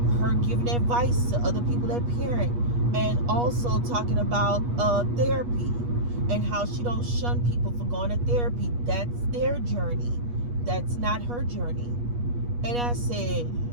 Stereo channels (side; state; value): left; late; 8.3 ms